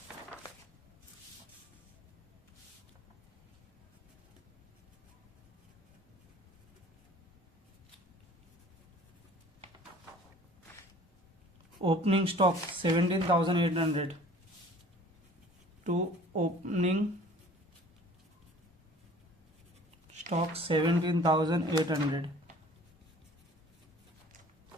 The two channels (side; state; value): both; normal; correlation 0.49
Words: Opening stock 17,800. To opening stock 17,800.